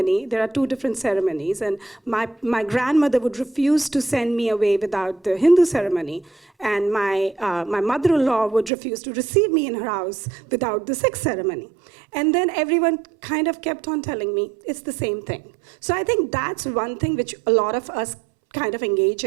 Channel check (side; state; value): left; drops out; at 8.7 s